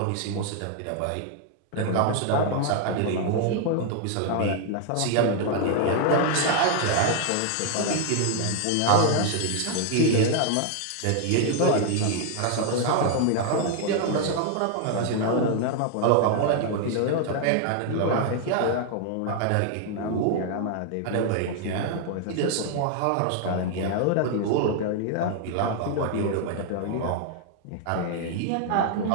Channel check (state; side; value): different; both; correlation 0.00